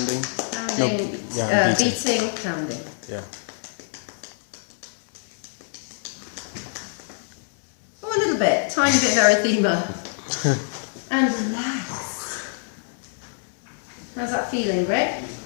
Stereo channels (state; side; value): silent; right; 61 dB below the other